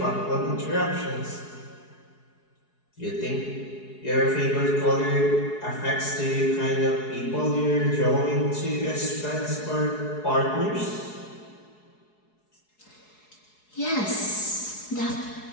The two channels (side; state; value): right; late; 4.7 ms